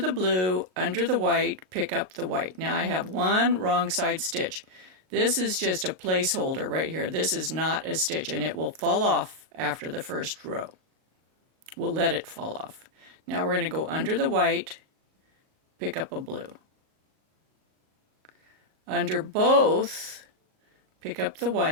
blue, under the white, pick up the white. Now I have one wrong side stitch. This is just a placeholder right here. This is not a stitch, and it will fall off after the first row. We'll let it fall off. Now we're going to go under the white, pick up a blue. Under both, pick up the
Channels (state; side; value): late; left; 38 ms